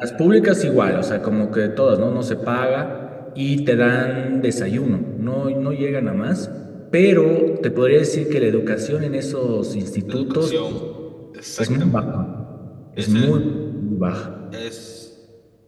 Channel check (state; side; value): identical; both; correlation 1.00